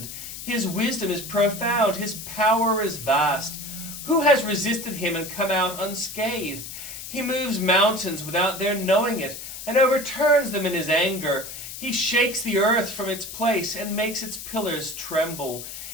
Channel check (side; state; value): left; noise; hiss, 10 dB below the sound